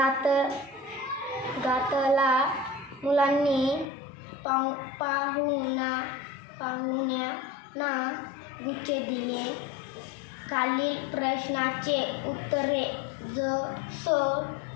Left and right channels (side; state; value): right; drops out; at 3.9 s